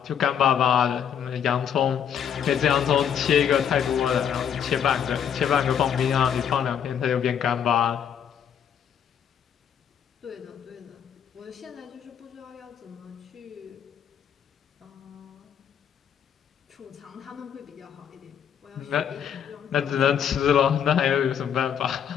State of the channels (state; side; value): quieter; right; 8.4 dB